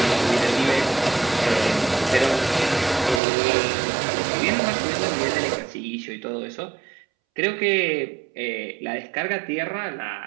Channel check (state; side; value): drops out; left; at 3.2 s